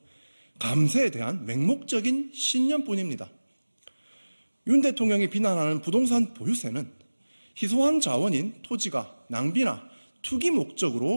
감세에 대한 맹목적인 신념뿐입니다. 윤 대통령이 비난하는 부동산 보유세는 희소한 자원인 토지가 낭비나 투기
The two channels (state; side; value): inverted; both; correlation -1.00